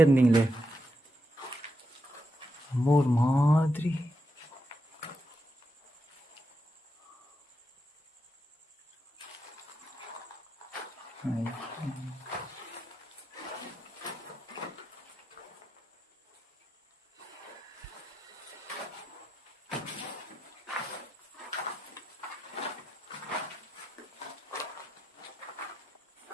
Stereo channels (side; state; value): both; normal; correlation 0.84